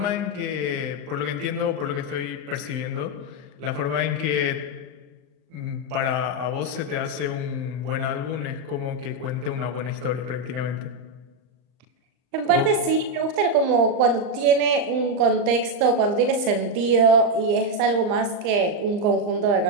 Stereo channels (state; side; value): late; left; 39 ms